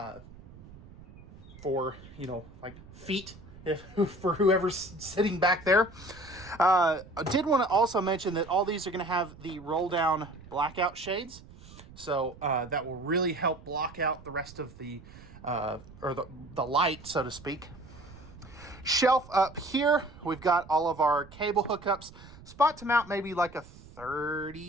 for, you know, like feet for whoever's sitting back there. I did want to also mention that all these are going to have the roll down blackout shades, so that will really help block out the rest of the the light, so to speak. Shelf up here, we've got all of our cable hookups. Spot to mount maybe like a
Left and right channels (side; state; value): right; noise; rumble, 19 dB below the sound